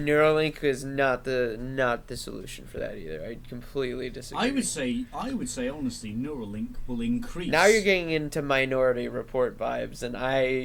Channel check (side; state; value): both; identical; correlation 1.00